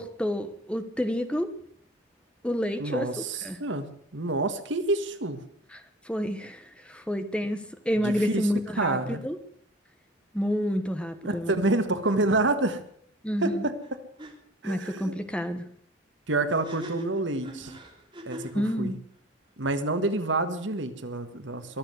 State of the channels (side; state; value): both; normal; correlation 0.42